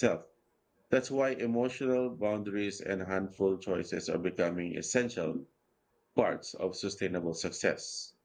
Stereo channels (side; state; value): both; identical; correlation 1.00